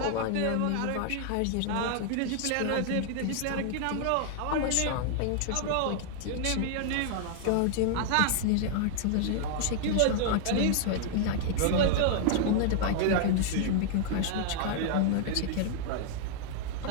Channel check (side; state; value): both; different; correlation 0.00